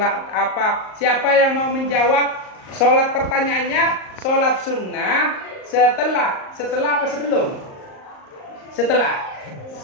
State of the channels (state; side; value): late; right; 38 ms